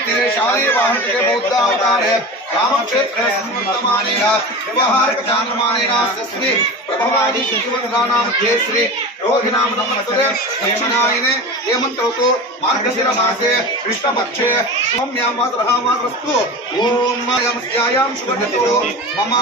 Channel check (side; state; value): both; normal; correlation 0.29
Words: तीरे शाली वाहनके बौद्धावतारे रामक्षेत्रे स्मृतमानेन व्यवहारिक चान्द्रमानेन श्री प्रभवादि शिवनानां श्री रोहिणां नमस्ते दक्षिणायने हेमन्तऋतु मार्गशिर मासे कृष्णपक्षे सौम्यां मातरस्तु ओम यमस्यायां शुभतिथौ मम